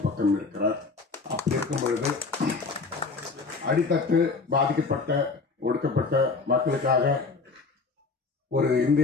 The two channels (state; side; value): quieter; right; 4.2 dB